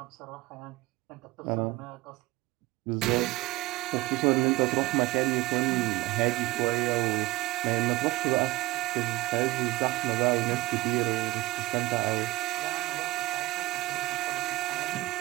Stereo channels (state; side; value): quieter; left; 19.8 dB